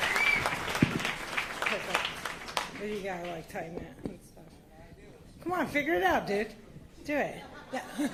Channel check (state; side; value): identical; both; correlation 1.00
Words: You gotta like tighten it and stuff. Come on, figure it out, dude. Do it. Yeah.